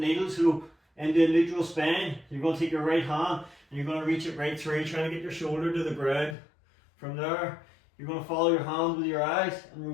so into a neutral spine. You're going to take your right hand and you're going to reach it right through, trying to get your shoulder to the ground. From there you're going to follow your hand with your eyes and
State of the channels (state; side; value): drops out; right; at 6.4 s